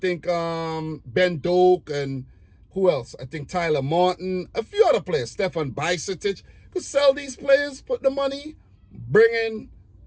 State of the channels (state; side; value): identical; both; correlation 1.00